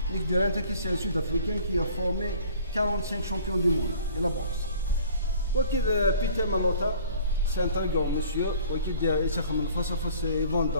Nick Durant, c'est un Sud-Africain qui a formé 45 champions du monde de la boxe. Peter Malota, c'est un très grand monsieur. Il est face à face dans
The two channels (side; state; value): both; inverted; correlation -0.50